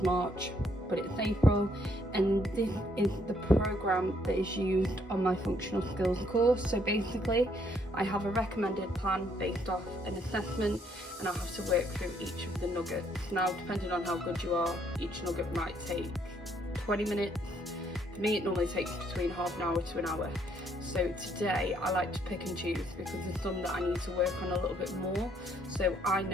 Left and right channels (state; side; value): normal; both; correlation 0.69